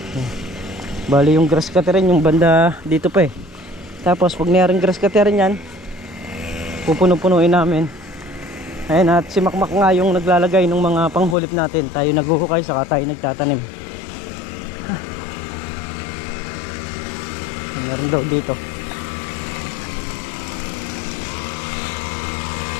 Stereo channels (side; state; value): right; drops out; at 11.4 s